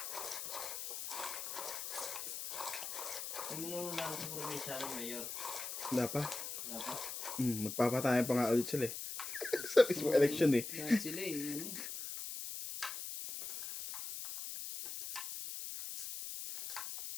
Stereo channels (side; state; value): left; noise; hiss, 6 dB below the sound